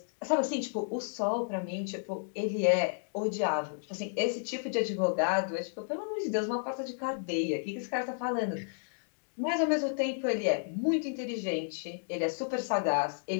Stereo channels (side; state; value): right; silent; digital silence